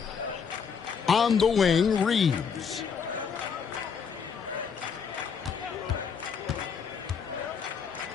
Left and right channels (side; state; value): right; quieter; 6.4 dB